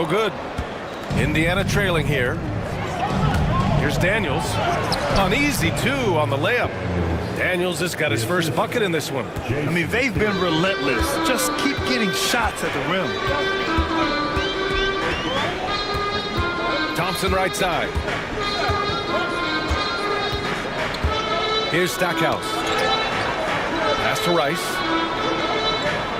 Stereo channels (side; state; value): both; identical; correlation 1.00